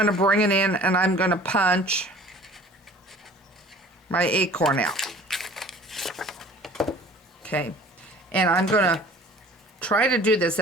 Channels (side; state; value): both; normal; correlation 0.47